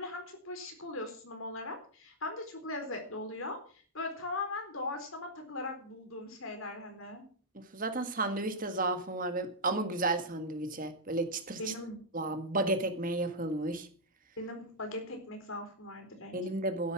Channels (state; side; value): normal; both; correlation -0.06